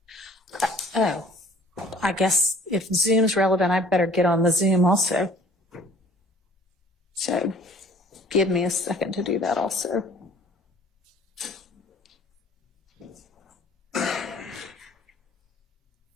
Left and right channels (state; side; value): normal; both; correlation 0.52